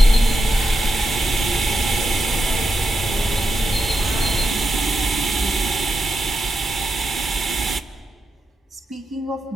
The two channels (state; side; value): normal; both; correlation 0.86